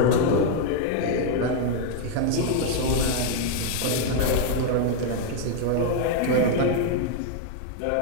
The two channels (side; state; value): both; different; correlation 0.00